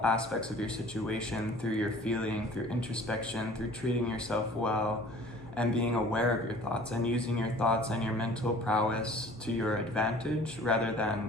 aspects of your situation through your feeling, through introspection, through treating yourself well, and being aware of your thoughts and using your thoughts and your mental prowess to your advantage rather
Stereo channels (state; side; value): normal; both; correlation 0.49